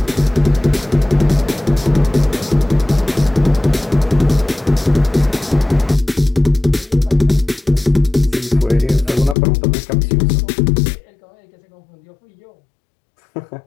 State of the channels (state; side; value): drops out; right; at 9.3 s